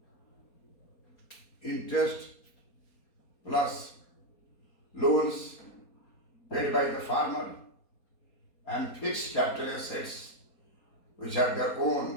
interest plus loans paid by the farmer, and fixed capital assets which are their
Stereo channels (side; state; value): right; late; 4.2 ms